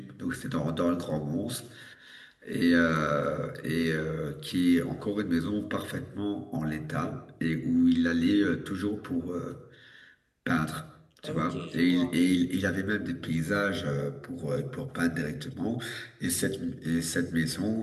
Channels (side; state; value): both; identical; correlation 1.00